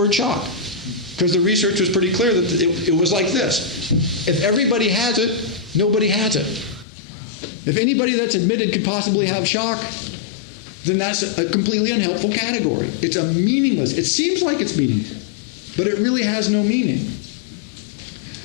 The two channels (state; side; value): drops out; right; at 6.9 s